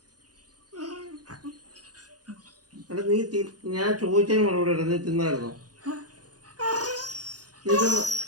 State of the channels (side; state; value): left; late; 0.68 ms